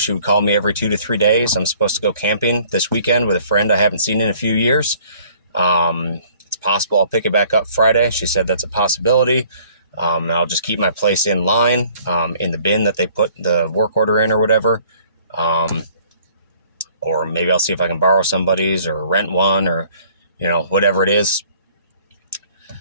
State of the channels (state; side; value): inverted; both; correlation -0.57